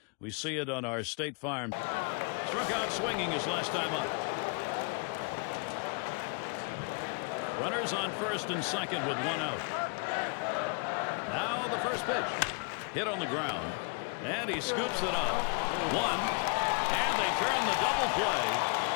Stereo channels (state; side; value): quieter; right; 35.9 dB